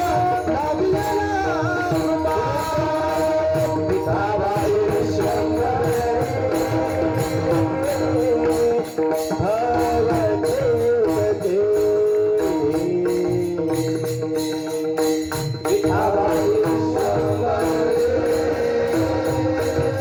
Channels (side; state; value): both; identical; correlation 1.00